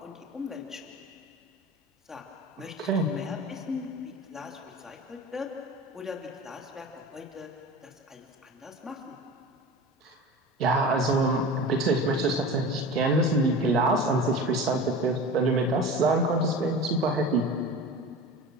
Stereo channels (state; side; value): normal; both; correlation 0.34